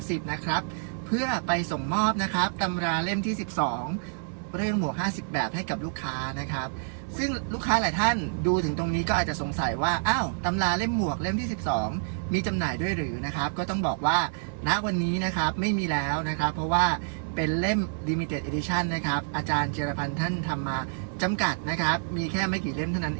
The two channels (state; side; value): silent; left; 59 dB below the other